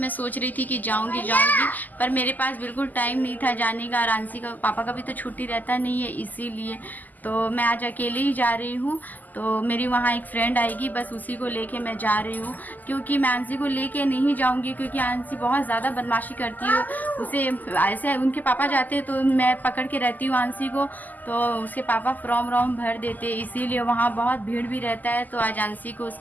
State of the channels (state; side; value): late; right; 0.083 ms